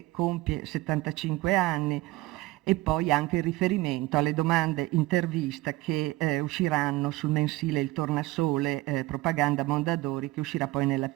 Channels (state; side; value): quieter; left; 19.4 dB